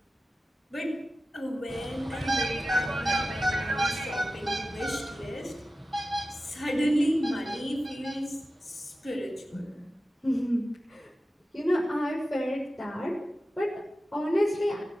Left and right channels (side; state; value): both; normal; correlation 0.94